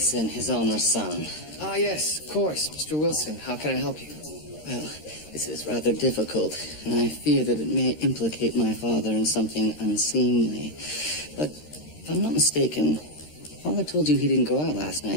his owner's son. Ah, yes, of course. Mr. Wilson, how can I help you? Well, this is rather difficult, and I fear that it may implicate my father in something unseemly. But if I'm not mistaken, Father told you he didn't go out last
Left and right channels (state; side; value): late; right; 13 ms